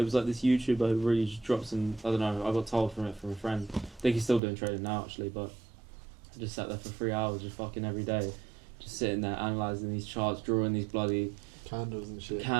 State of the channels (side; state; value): left; drops out; at 4.4 s